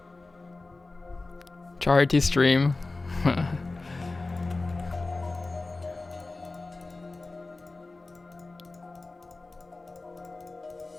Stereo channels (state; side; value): quieter; right; 3.4 dB